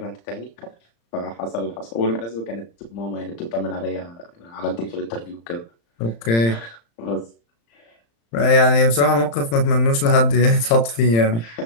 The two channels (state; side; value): late; right; 35 ms